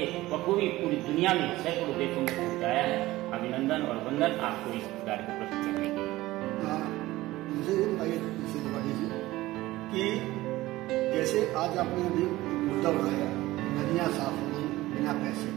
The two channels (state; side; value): quieter; left; 17.6 dB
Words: बखूबी पूरी दुनिया में सैकड़ों देशों में पहुंचाया है। अभिनंदन और वंदन आपको इस कार्य को प्रस्तुत करने के लिए। मुझे कि जैसे आज आपने अभी मुद्दा उठाया, नदियां साफ हो गई बिना पैसे,